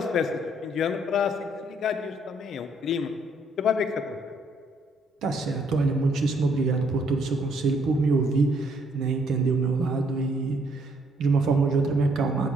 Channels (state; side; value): normal; both; correlation 0.68